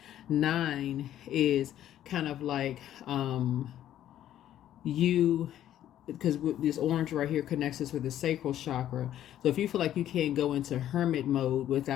9 is kind of like because this orange right here connects us with the sacral chakra. So if you feel like you can't go into hermit mode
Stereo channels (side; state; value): right; quieter; 11.8 dB